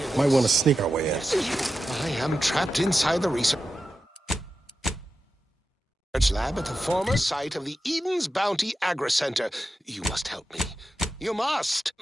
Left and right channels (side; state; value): both; normal; correlation 0.91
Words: Might want to sneak our way in. I am trapped inside the research lab at the former site of the Eden's Bounty Agri-Center. You must help me. You must!